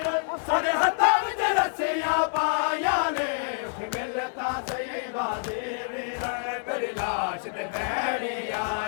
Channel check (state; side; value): silent; right; digital silence